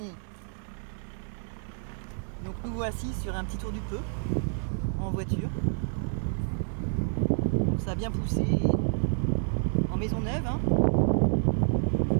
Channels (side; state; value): left; silent; digital silence